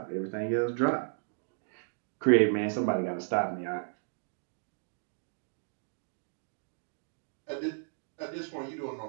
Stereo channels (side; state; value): left; silent; digital silence